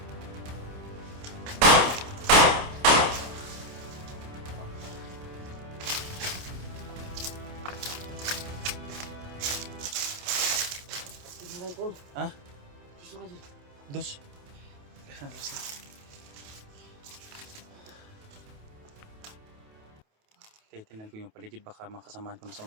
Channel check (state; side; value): late; left; 28 ms